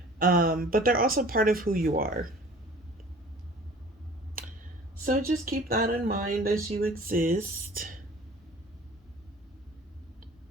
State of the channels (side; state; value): both; normal; correlation 0.46